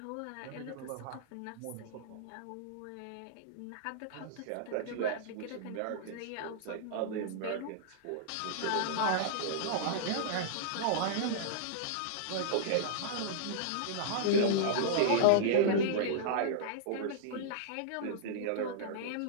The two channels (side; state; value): both; different; correlation -0.02